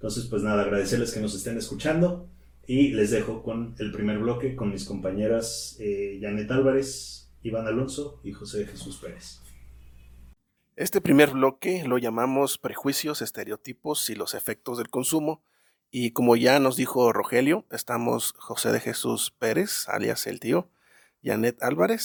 pues nada, agradecerles que nos estén escuchando, y les dejo con el primer bloque con mis compañeras Janet Álvarez, Iván Alonso y José de Jesús Pérez. Este primer bloque lo llamamos prejuicios, estereotipos y los efectos del consumo. Y como ya nos dijo Rogelio, estamos José de Jesús Pérez, alias el tío, Janet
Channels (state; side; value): identical; both; correlation 1.00